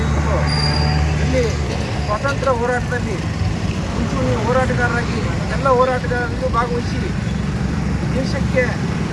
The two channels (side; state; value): both; identical; correlation 1.00